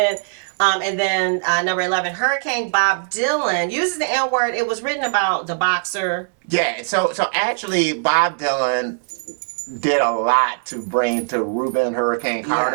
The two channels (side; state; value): left; silent; 65 dB below the other